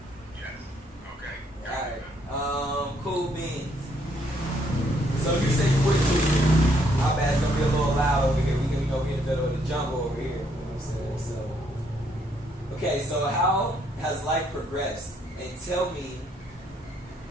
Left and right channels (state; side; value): normal; both; correlation 0.70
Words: Yes. Okay. All right. Cool beans. So you say you wouldn't do. My bad, it's gonna be a little loud over here. We in the middle of the jungle over here. You know what I'm saying? So, okay. So how has life progressed? And tell me.